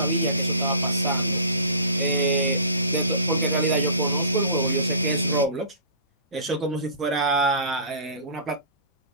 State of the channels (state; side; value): inverted; both; correlation -0.41